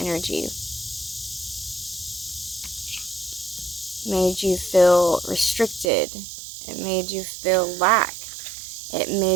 Made you feel restricted. It made you feel lack. It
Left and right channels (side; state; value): left; drops out; at 5.9 s